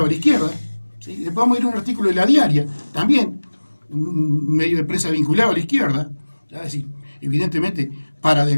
a la izquierda. ¿Sí? Después vamos a ir a un artículo de La Diaria, también un medio de prensa vinculado a la izquierda, ¿ya? Así, evidentemente para de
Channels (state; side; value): inverted; both; correlation -1.00